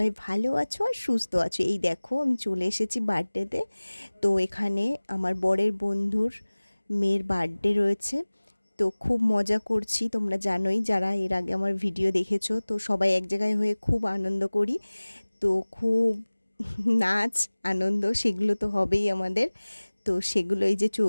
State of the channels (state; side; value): inverted; both; correlation -1.00